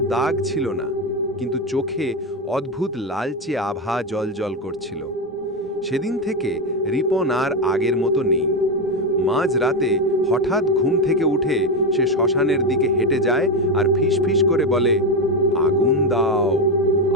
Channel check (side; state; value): both; normal; correlation 0.11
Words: দাগ ছিল না, কিন্তু চোখে অদ্ভুত লালচে আভা জ্বলজ্বল করছিল। সেদিন থেকে রিপন আর আগের মতো নেই। মাঝরাতে হঠাৎ ঘুম থেকে উঠে সে শ্মশানের দিকে হেঁটে যায় আর ফিস ফিস করে বলে, আগুন দাও,